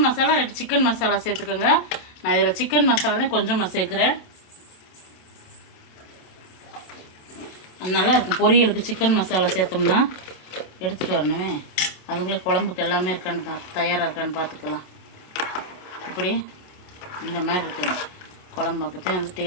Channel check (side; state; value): right; late; 27 ms